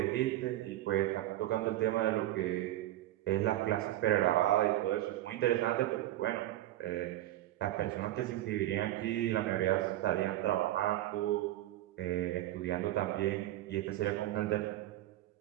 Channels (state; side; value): quieter; left; 14.9 dB